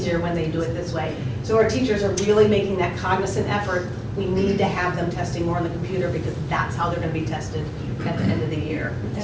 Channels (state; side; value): identical; both; correlation 1.00